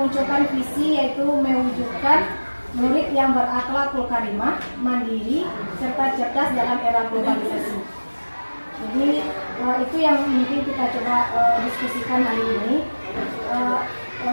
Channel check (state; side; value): inverted; both; correlation -1.00